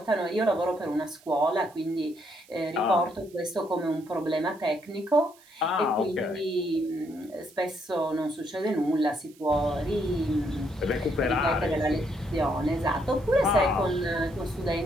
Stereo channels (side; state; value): right; noise; hiss, 27 dB below the sound